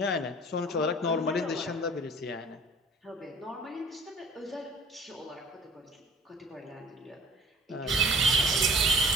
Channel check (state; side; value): normal; both; correlation 0.49